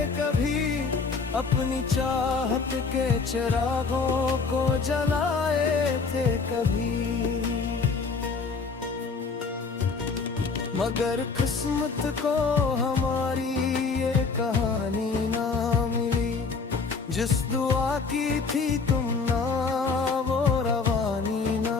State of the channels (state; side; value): quieter; right; 4.7 dB